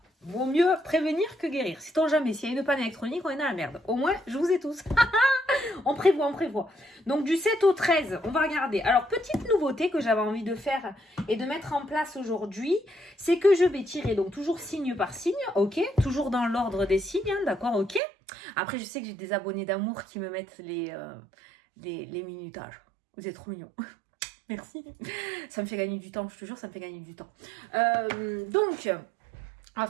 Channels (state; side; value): drops out; left; at 18.0 s